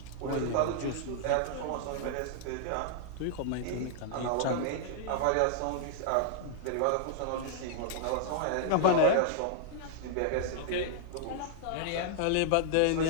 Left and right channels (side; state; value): both; different; correlation -0.01